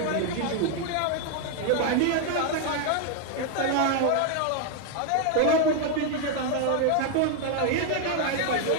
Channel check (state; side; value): different; both; correlation 0.00